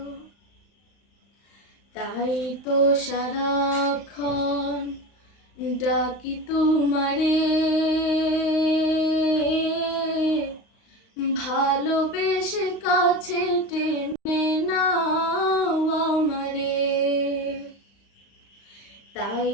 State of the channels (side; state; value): right; late; 35 ms